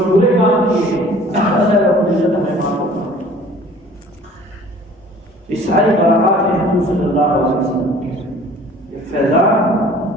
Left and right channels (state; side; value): normal; both; correlation 0.49